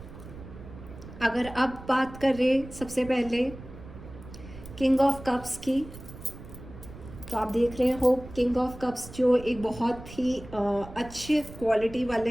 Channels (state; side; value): noise; right; rumble, 15 dB below the sound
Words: अगर अब बात करें सबसे पहले किंग ऑफ कप्स की, तो आप देख रहे हो किंग ऑफ कप्स जो एक बहुत ही अच्छे क्वालिटी